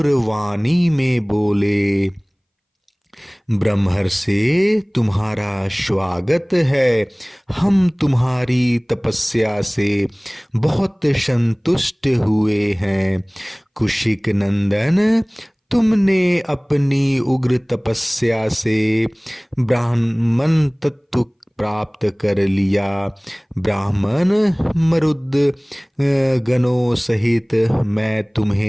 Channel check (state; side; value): identical; both; correlation 1.00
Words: वाणी में बोले, ब्रह्मर्षि, तुम्हारा स्वागत है। हम तुम्हारी तपस्या से बहुत संतुष्ट हुए हैं। कुशिक नंदन, तुमने अपनी उग्र तपस्या से ब्राह्मण तत्व प्राप्त कर लिया। ब्राह्मण मरुद गणों सहित मैं